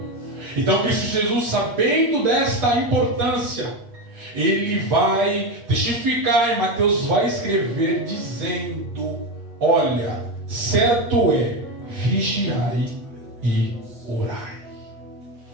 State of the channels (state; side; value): late; left; 8.4 ms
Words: Então Cristo Jesus, sabendo desta importância, Ele vai testificar, e Mateus vai escrever dizendo: olha, certo é, vigiai e orai.